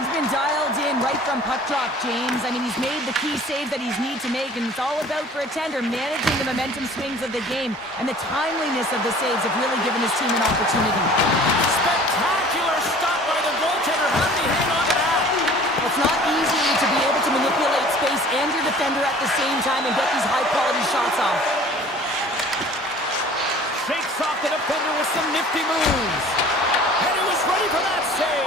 been dialed in right from puck drop, James. I mean, he's made the key save that he's need to make, and it's all about, for a tender, managing the momentum swings of the game, and the timeliness of the saves have really given his team an opportunity. Spectacular stop by the goaltender. How did he hang on to that? It's not easy to be able to manipulate space and your defender at the same time and get these high-quality shots off. Shakes off the defender with some nifty moves. And he was ready for that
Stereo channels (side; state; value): both; normal; correlation 0.48